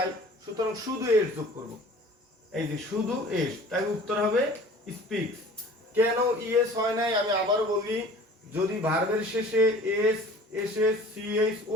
সুতরাং শুধু এস যোগ করব, এই যে শুধু এস, তাই উত্তর হবে স্পিক্স। কেন ইএস হয় নাই আমি আবার বলি, যদি ভার্বের শেষে এস, এসএস, সিএস, ও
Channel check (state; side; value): normal; both; correlation 0.46